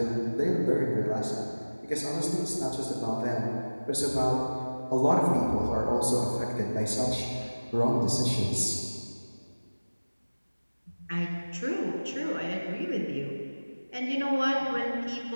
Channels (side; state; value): both; inverted; correlation -1.00